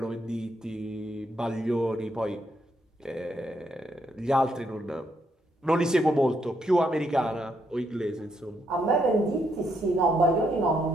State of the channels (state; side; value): normal; both; correlation 0.76